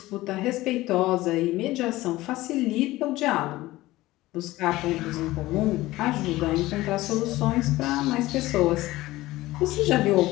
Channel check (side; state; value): right; quieter; 17.8 dB